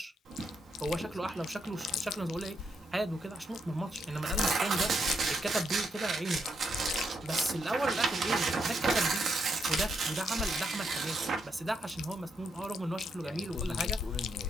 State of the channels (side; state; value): both; normal; correlation 0.79